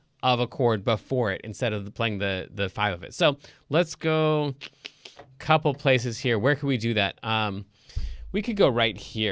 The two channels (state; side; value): identical; both; correlation 1.00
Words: of a chord before it instead of playing the 5 of it. So let's go a couple places here. Where could we do that? We could go right